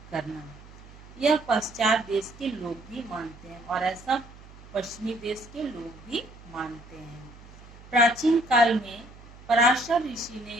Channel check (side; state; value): right; noise; hum, 20 dB below the sound